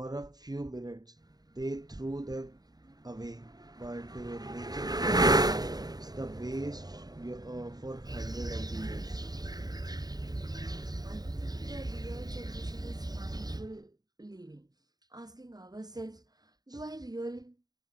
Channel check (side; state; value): left; late; 0.19 ms